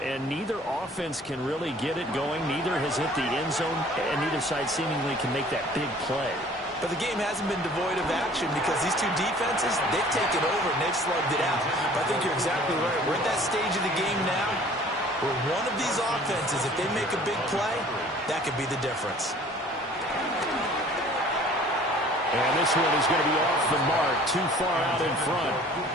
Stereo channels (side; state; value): both; normal; correlation 0.51